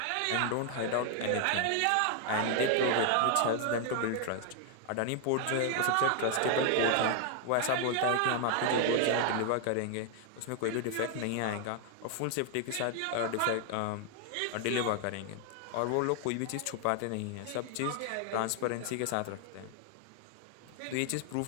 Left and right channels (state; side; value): different; both; correlation 0.00